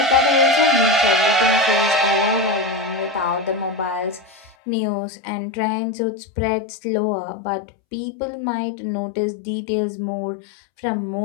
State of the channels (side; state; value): right; drops out; at 4.5 s